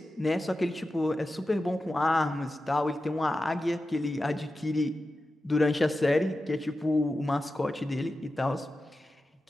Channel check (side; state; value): both; normal; correlation 0.93